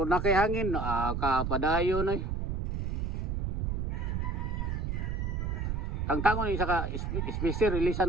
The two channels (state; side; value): noise; right; rumble, 1 dB below the sound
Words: na kay hangin, kapadayon ay. Tangtangon isa ka speaker